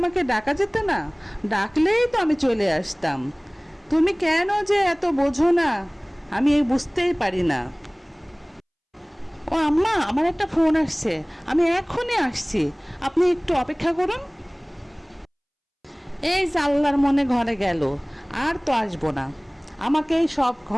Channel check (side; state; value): both; identical; correlation 1.00